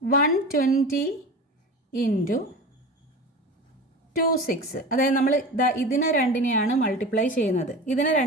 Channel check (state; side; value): normal; both; correlation 0.32